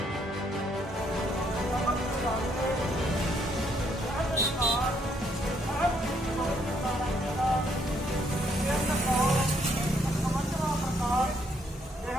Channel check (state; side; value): normal; both; correlation 0.71